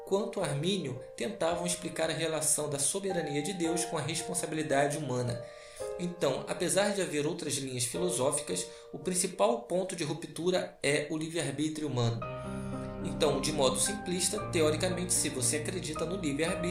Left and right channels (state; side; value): identical; both; correlation 1.00